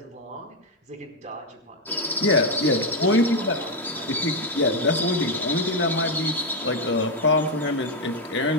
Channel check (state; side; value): normal; both; correlation 0.04